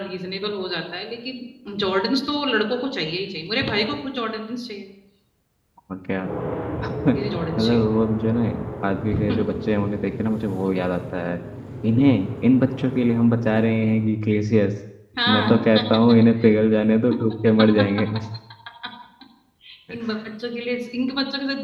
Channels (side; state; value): both; identical; correlation 1.00